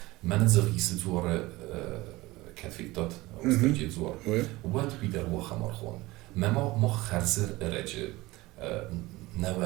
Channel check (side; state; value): left; quieter; 20.2 dB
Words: Men zergis زور كتفيتات استرجي زور وات بيدر وخمر خون ما خرزر رجع